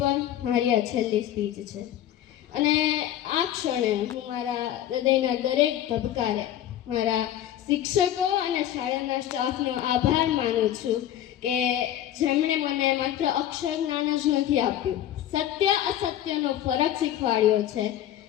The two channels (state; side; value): quieter; right; 11.8 dB